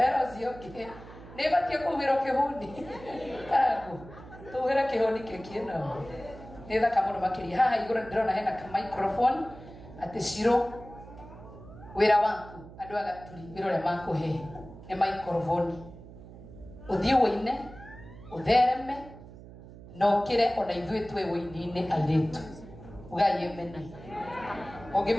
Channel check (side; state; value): right; noise; hum, 17 dB below the sound